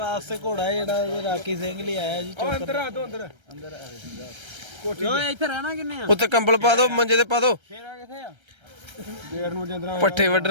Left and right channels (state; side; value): late; left; 1.3 ms